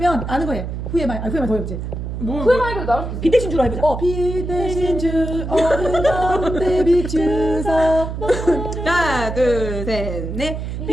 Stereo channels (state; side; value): noise; right; hum, 5 dB below the sound